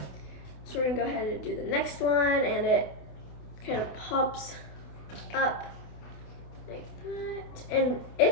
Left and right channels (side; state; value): right; late; 28 ms